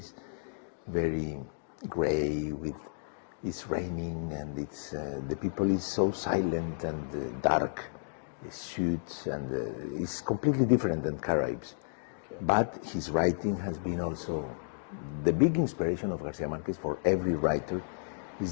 very gray, it's raining, and the people is so silent and dark, suits, and it's completely different than Caribs. But his writing has been also the big inspiration of Garcia Marquez for every writer is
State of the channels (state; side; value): silent; right; digital silence